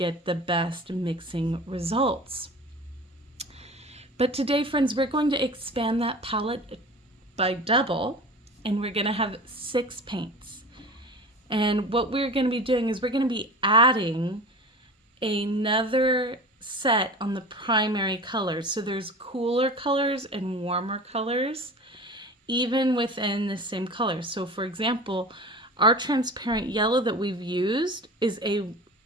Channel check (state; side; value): normal; both; correlation 0.36